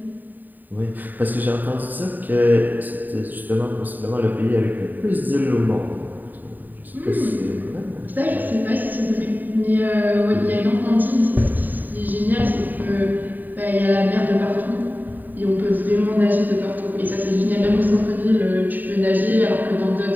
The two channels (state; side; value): late; left; 0.088 ms